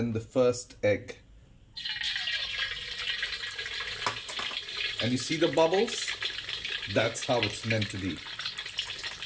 the first egg. And you see the bubbles? That's how it's meant to be.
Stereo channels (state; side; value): identical; both; correlation 1.00